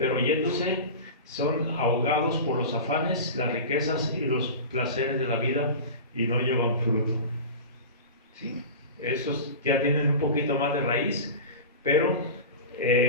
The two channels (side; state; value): both; inverted; correlation -0.30